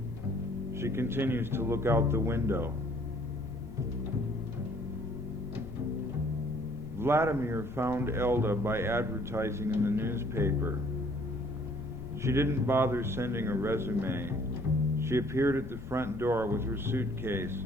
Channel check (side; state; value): left; noise; rumble, 12 dB below the sound